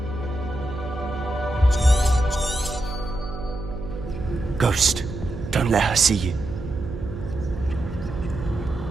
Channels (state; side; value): noise; right; hum, 9 dB below the sound